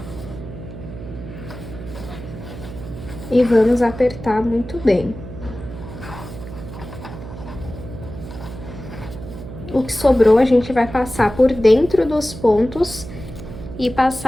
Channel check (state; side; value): noise; right; hum, 12 dB below the sound